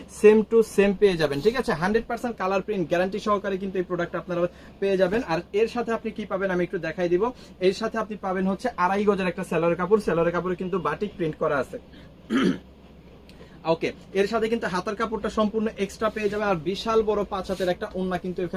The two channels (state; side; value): identical; both; correlation 1.00